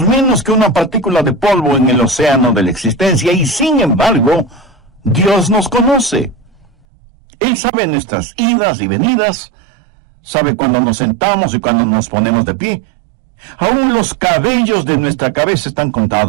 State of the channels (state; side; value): drops out; left; at 6.9 s